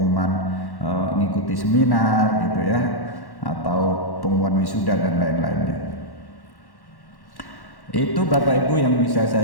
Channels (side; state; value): right; late; 1.1 ms